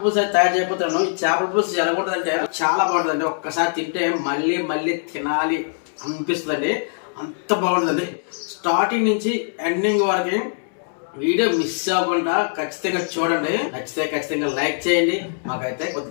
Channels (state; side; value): silent; right; digital silence